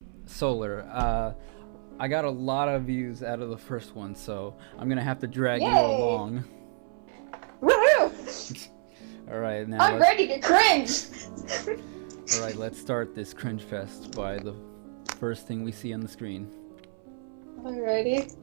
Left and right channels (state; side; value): silent; left; 59 dB below the other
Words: Solar, I got a lot of views out of the first one, so I'm gonna have to drag you Yay. along. Woohoo! Alright, now I'm ready to cringe! Alright, let's start this cringe fest by the first thing we see on the screen. Alrighty.